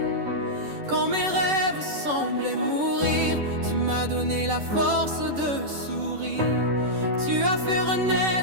quand mes rêves semblaient mourir, tu m'as donné la force de sourire. Tu as fait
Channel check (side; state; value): left; late; 10 ms